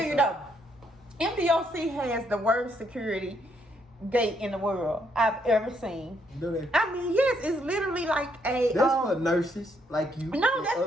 you though, MDOC has the worst security gate in the world I've ever seen. Do they? I mean, yes, it's literally like a. That's for nurses like you. No, that's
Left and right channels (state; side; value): normal; both; correlation 0.73